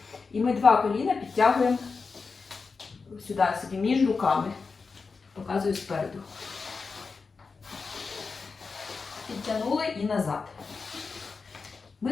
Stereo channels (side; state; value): right; quieter; 4.7 dB